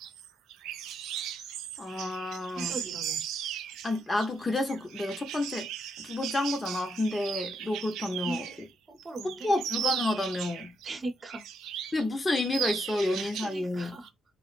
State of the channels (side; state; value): both; normal; correlation 0.78